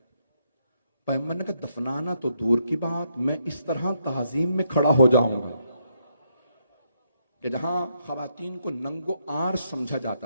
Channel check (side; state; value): both; inverted; correlation -0.77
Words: پیغمبر نے کہا دفنانا تو دور کی بات, میں اس طرح تعظیم میں کھڑا ہو جاؤں گا کہ جہاں خواتین کو ننگو آر سمجھا